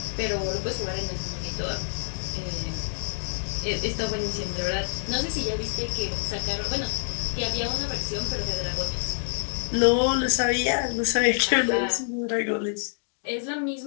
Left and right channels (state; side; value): silent; right; digital silence